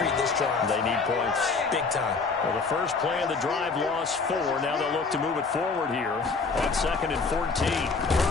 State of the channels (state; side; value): quieter; right; 4.5 dB